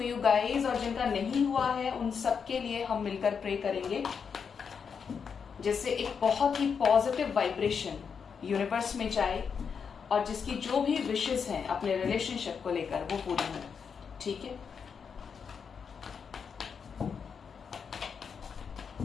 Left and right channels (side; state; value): right; quieter; 6.4 dB